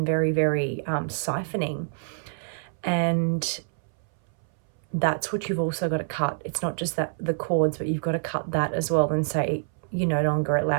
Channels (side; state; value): left; silent; 60 dB below the other